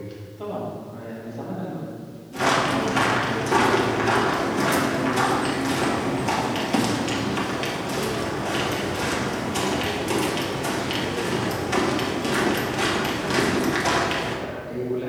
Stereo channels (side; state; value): both; identical; correlation 1.00